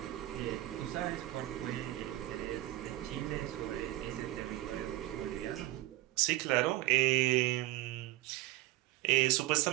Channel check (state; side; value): quieter; left; 16.6 dB